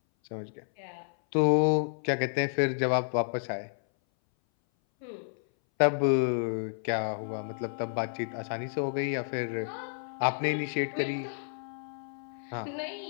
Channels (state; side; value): silent; right; 57 dB below the other